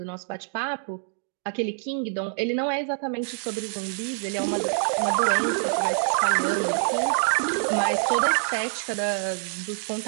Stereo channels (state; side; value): silent; left; 59 dB below the other